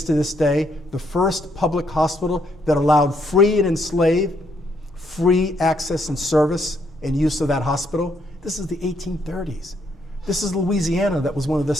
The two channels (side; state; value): both; normal; correlation 0.73